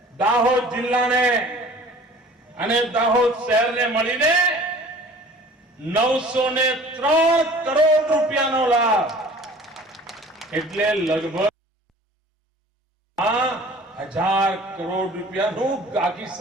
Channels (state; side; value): normal; both; correlation 0.47